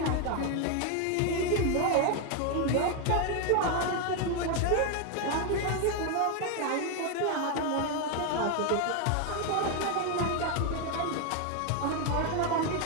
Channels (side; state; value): both; different; correlation 0.01